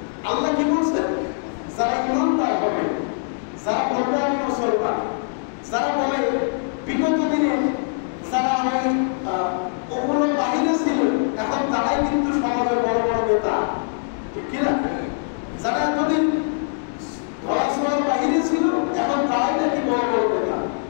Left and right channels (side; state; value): right; silent; digital silence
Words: আল্লাহ কি বলছেন? যারা ইমানদার হবে, যারা বলবে আমি মুসলমান, যারা বলে বিগত দিনে যারা ওই ওগুলো বাহিরে ছিল এখন তারাই কিন্তু সমাজের বড় বড় নেতা, ঠিক কিনা? যারা এতদিন ধরাছোঁয়ার বাহিরে ছিল এখন তারাই নাকি বড় বড় নেতা।